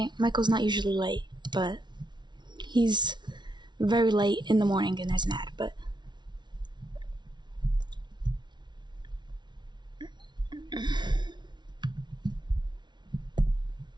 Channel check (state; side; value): late; left; 0.21 ms